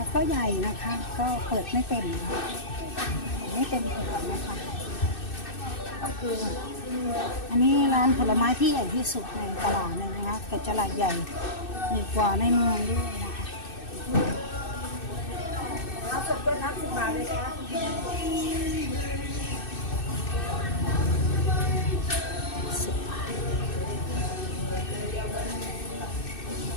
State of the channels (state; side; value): late; right; 2.6 ms